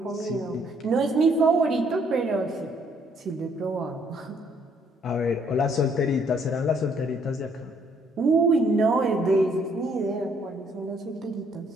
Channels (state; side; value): normal; both; correlation 0.66